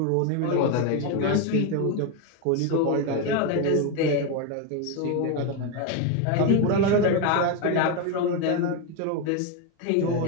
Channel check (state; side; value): different; both; correlation 0.02